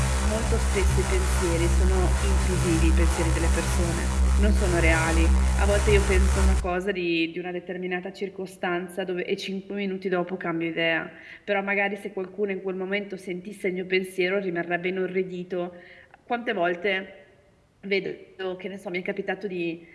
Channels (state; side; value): identical; both; correlation 1.00